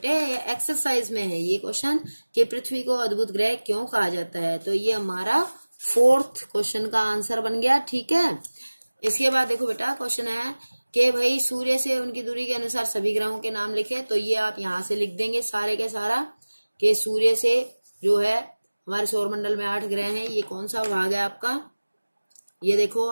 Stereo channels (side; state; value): both; inverted; correlation -1.00